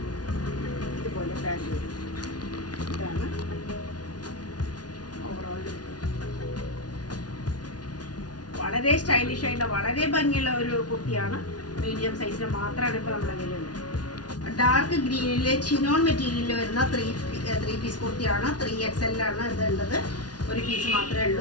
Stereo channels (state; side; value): late; right; 0.69 ms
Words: ഇതുപോലെ പാൻറ്റ് വരും. ഇതാണ് ഓവറോൾ ലുക്ക്. വളരെ സ്റ്റൈലിഷ് ആയിട്ടുള്ള വളരെ ഭംഗിയുള്ള ഒരു കുർത്തിയാണ്. മീഡിയം സൈസിന് മാത്രമാണ് ഇപ്പോൾ നമ്മുടെ കയ്യിലുള്ളത്. ഡാർക്ക് ഗ്രീനിലെ ചിനോൺ മെറ്റീരിയലിൽ വരുന്ന 3 പീസ് കുർത്തിയാണ്. 3 XL ആണ് ഇതുള്ളത്. ഒരു പീസ് മാത്രമേ